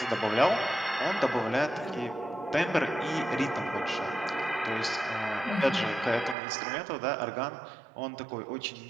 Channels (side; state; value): left; drops out; at 6.4 s